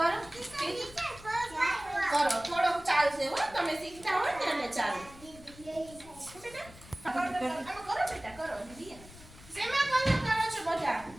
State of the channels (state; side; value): noise; left; rumble, 20 dB below the sound